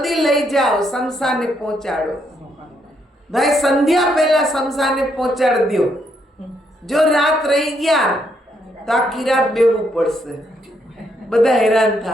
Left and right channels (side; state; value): both; normal; correlation 0.75